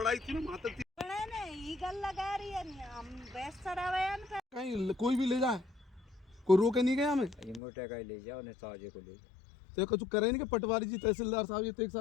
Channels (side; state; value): right; drops out; at 7.6 s